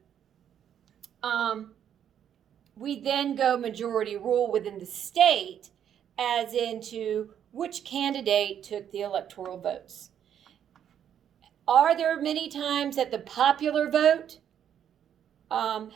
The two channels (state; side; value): quieter; left; 9.3 dB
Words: we then go majority rule within the state as into which candidate took the electoral votes. Are there many times that the popular vote